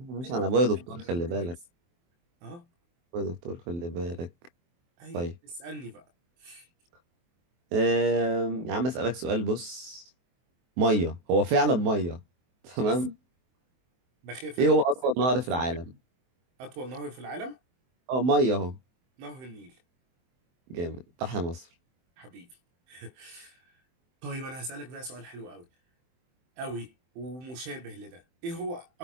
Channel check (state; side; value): late; left; 23 ms